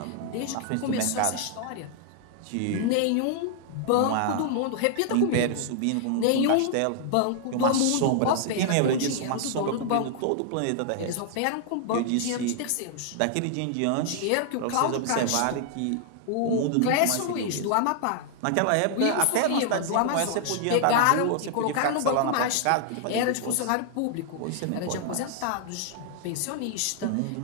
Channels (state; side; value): different; both; correlation 0.00